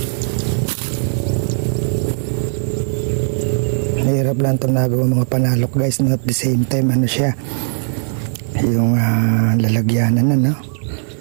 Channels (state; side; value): silent; left; 63 dB below the other